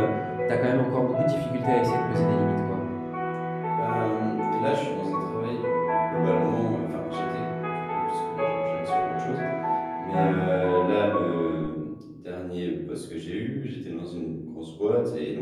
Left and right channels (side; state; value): both; identical; correlation 1.00